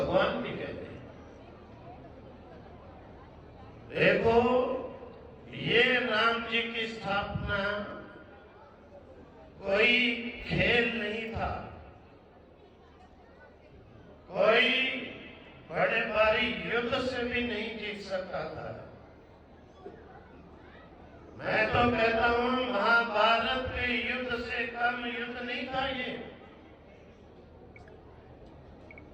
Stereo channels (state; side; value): identical; both; correlation 1.00